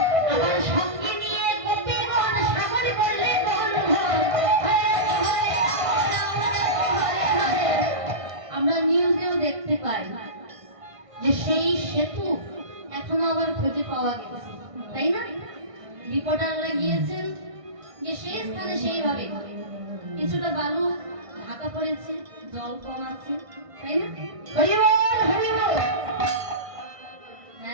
आबार संगे निये गोपीगण सागर करले দেখতে পাই যে সেই সেতু এখনো আবার খুঁজে পাওয়া গেছে, তাই না? রিপোর্টাররা গিয়েছেন যে সেই স্থানে সেইভাবে কিছুটা বালু ঢাকা পড়েছে, জল কম আছে, তাই না? হরি বল হরি বল।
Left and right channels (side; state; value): left; late; 1.5 ms